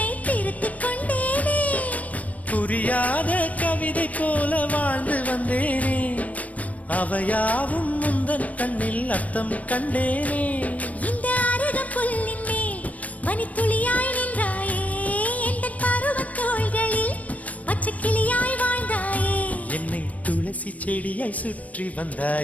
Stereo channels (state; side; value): late; right; 0.069 ms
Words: திருத்திக் கொண்டேனே. புரியாத கவிதை போல வாழ்ந்து வந்தேனே, அவையாவும் முந்தன் கண்ணில் அர்த்தம் கண்டேனே. இந்த அருக புல்லின் மேல் மணித்துளியாய் நின்றாயே, எந்த பருவத் தோள்களில் பச்சை கிளியாய் வாழ்ந்தாயே. என்னை துளசி செடியாய் சுற்றி